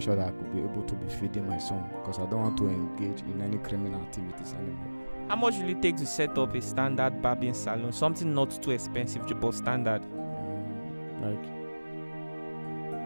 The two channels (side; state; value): both; inverted; correlation -1.00